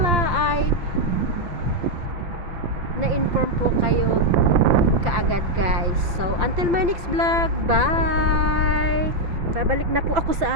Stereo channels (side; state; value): left; late; 5.9 ms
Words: ay na-inform po kayo kaagad guys. So until my next vlog, bye. Babalik na po ako